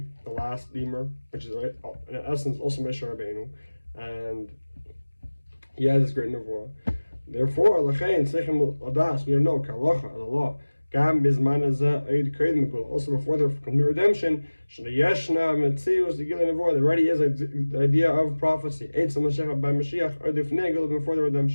the last redeemer, which is right in essence also Moshe Rabbeinu, and he has this great nevuah. Therefore, Lachain Sechem Adas, we know Kalacha, the law. Gam Bizman also before the complete redemption, Yeshna Metzius, the Gilin Nevuah, there already is the idea of prophecy. Eitz Mashiach by Mashiach, or the Fnegel before the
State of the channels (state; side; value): inverted; both; correlation -1.00